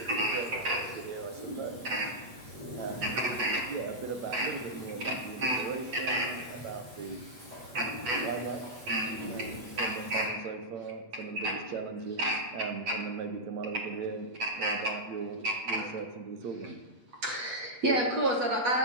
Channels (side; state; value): left; late; 8.2 ms